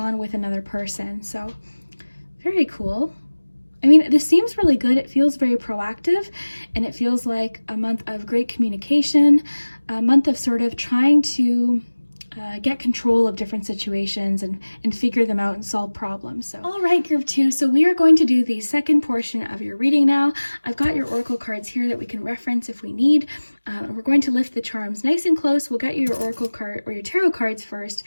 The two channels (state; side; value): inverted; both; correlation -1.00